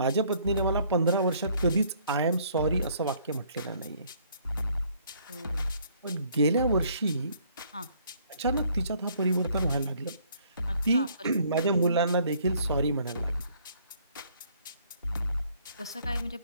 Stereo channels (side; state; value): both; inverted; correlation -0.63